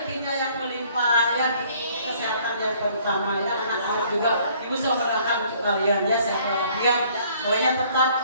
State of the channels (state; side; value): inverted; both; correlation -0.59